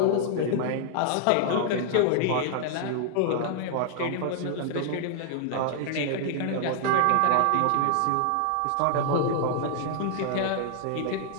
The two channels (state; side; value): different; both; correlation 0.00